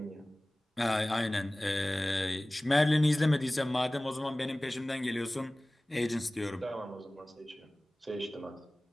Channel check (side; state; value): both; normal; correlation 0.98